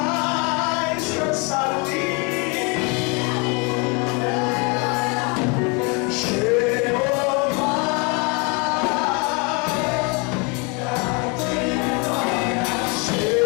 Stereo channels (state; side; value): quieter; right; 31.5 dB